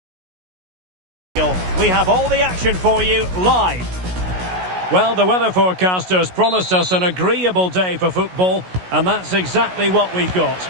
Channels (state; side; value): late; left; 16 ms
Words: We have all the action for you live. Well, the weather forecasters promised us an agreeable day for football, and that's exactly what we've got.